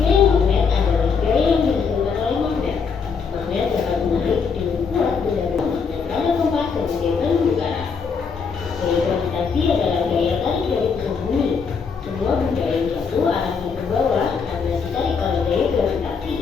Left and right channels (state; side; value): quieter; right; 5.6 dB